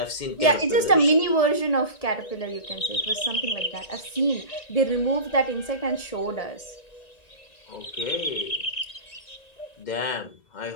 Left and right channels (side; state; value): right; late; 1.7 ms